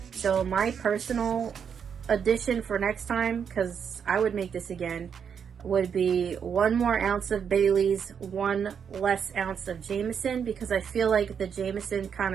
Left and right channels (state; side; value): quieter; left; 7.3 dB